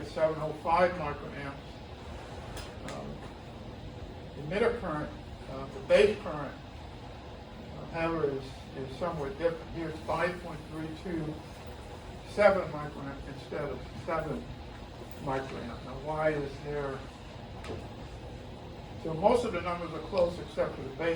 705 microamps. Emitter current, the base current, however, is somewhat different. Here's 5.327 microamp instead of 7 microamp. Now, why is there? So most of the numbers are close except for the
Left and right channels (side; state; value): both; identical; correlation 1.00